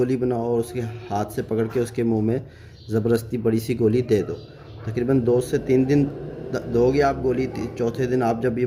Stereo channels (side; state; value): both; identical; correlation 1.00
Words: बनाओ और उसके हाथ से पकड़ के उसके मुंह में ज़बरदस्ती बड़ी सी गोली दे दो। तकरीबन 2 से 3 दिन दोगे आप गोली, चौथे दिन आप जब ये